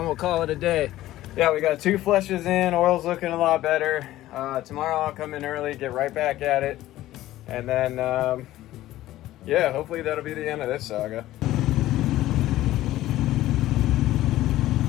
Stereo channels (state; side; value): quieter; right; 15.1 dB